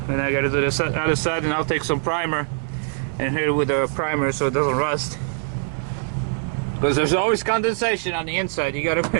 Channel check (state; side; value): silent; left; digital silence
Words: and I gotta do the other side, and I'll take some primer and hit it with a primer so it doesn't rust, because there's always condensation on the inside. You